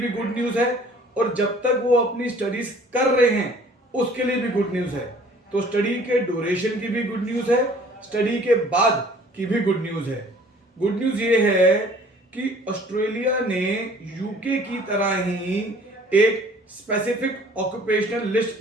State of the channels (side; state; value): both; normal; correlation 0.53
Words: गुड न्यूज है। और जब तक वो अपनी स्टडीज कर रहे हैं उसके लिए भी गुड न्यूज है। तो स्टडी के ड्यूरेशन की भी गुड न्यूज है, स्टडी के बाद की भी गुड न्यूज है। गुड न्यूज ये है कि ऑस्ट्रेलिया ने यूके की तरह ही एक स्पेसिफिक ऑक्यूपेशनल